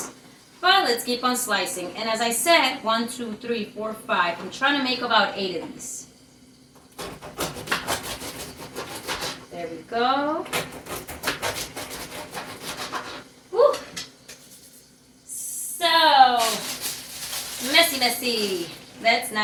But let's keep on slicing. And as I said, 1, 2, 3, 4, 5. I'm trying to make about 8 of these. There we go. Woo. So, messy. Let's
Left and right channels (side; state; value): both; identical; correlation 1.00